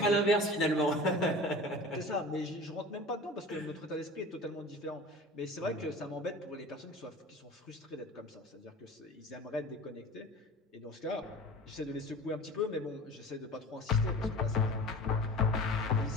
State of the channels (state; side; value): normal; both; correlation 0.37